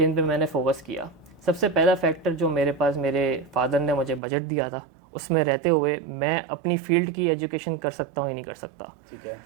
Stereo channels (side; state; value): left; drops out; at 4.2 s